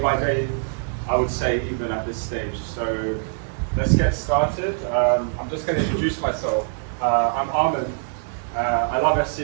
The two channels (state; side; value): silent; left; digital silence